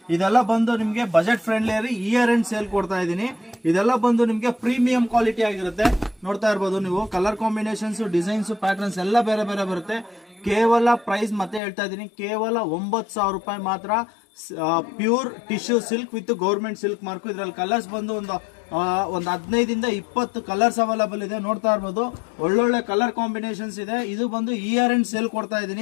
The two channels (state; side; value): drops out; right; at 11.6 s